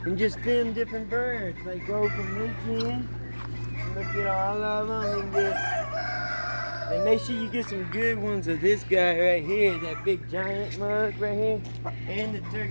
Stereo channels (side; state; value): both; inverted; correlation -1.00